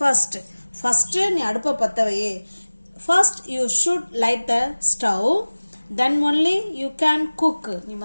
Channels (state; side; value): inverted; both; correlation -1.00